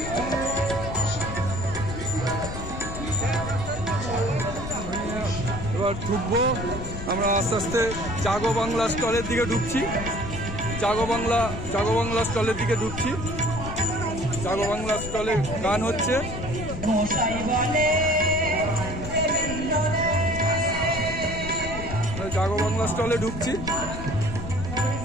এবার ঢুকবো আমরা আস্তে আস্তে জাগো বাংলা স্টলের দিকে ঢুকছি। জাগো বাংলা স্টলের দিকে ঢুকছি। জাগো বাংলা স্টলে গান হচ্ছে। জাগো বাংলা স্টলে ঢুকছি।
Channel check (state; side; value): noise; left; rumble, 7 dB below the sound